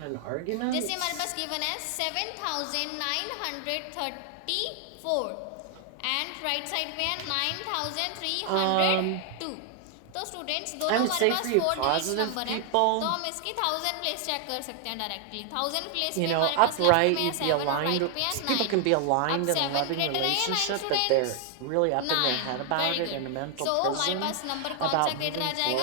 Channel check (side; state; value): both; different; correlation 0.00